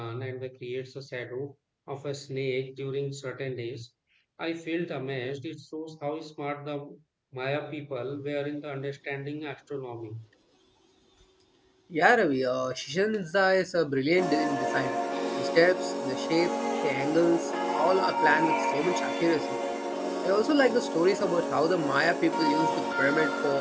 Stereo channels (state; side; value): identical; both; correlation 1.00